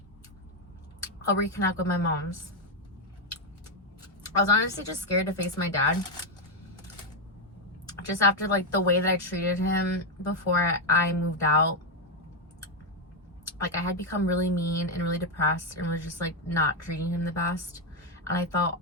I'll reconnect with my mom's. I was honestly just scared to face my dad. Just after like the way that I treated him before I moved out. Like I had become really mean and really depressed and was just like not treating him the best. And I felt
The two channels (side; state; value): both; normal; correlation 0.04